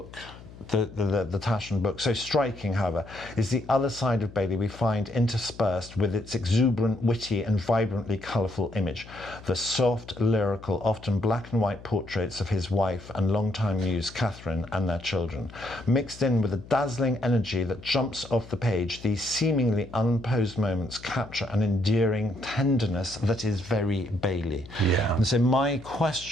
the Taschen book, so striking, however, is the other side of Bailey we find interspersed with its exuberant, witty and vibrantly colourful image. The soft, lyrical, often black and white portraits of his wife and longtime muse Catherine and their children. Mixed in with a dazzling energy that jumps off the page, these seemingly unposed moments capture an endearing tenderness that is very Bailey. Yeah. And so my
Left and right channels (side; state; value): left; noise; hum, 18 dB below the sound